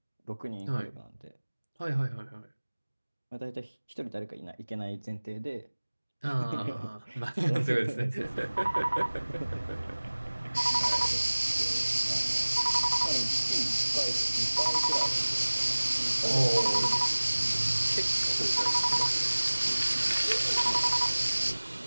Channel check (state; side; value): inverted; both; correlation -1.00